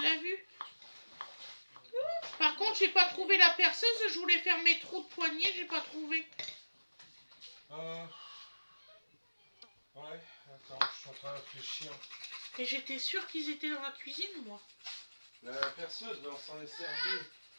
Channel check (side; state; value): both; inverted; correlation -1.00